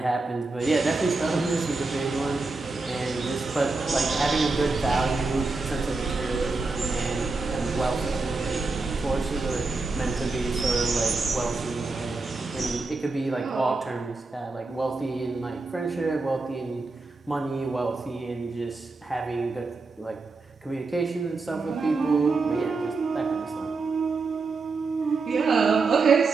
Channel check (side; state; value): left; quieter; 3.8 dB